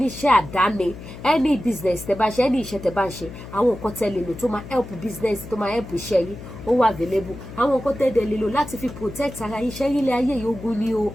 àdáni any business tẹ́ bá ṣe any iṣẹ́ tẹ́ bá ṣe àwọn nǹkan tẹ́ lè lò tó máa help business tó máa help iṣẹ́ yín ó wà available àwọn nǹkan tẹ́ dẹ̀ lè lò láti fi protect ara yín iṣẹ́ yín lé ayé yìí ogun ni o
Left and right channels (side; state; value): left; noise; hum, 13 dB below the sound